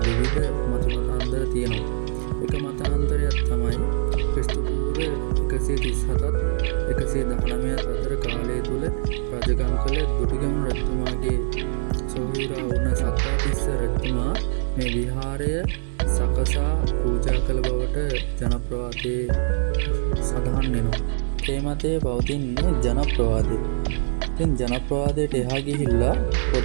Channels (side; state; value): left; silent; digital silence